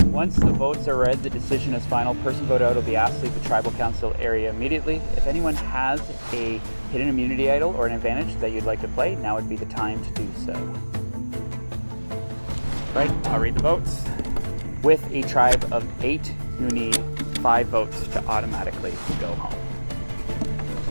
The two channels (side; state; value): both; inverted; correlation -1.00